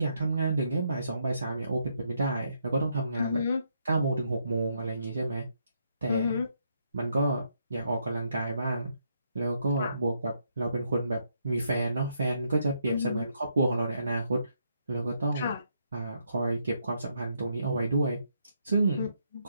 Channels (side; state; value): both; inverted; correlation -0.76